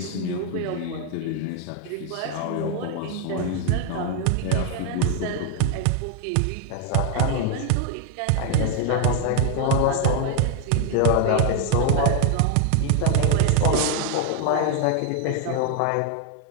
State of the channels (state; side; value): different; both; correlation 0.00